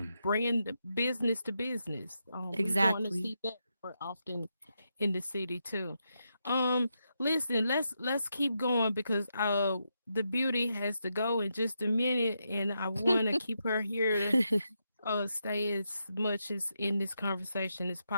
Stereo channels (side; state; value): both; inverted; correlation -0.84